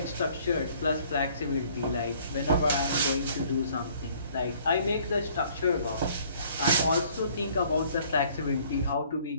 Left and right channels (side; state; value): both; inverted; correlation -0.58